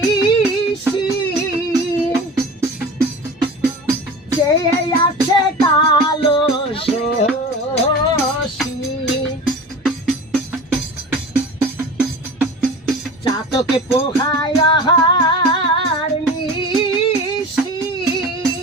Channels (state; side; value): normal; both; correlation 0.34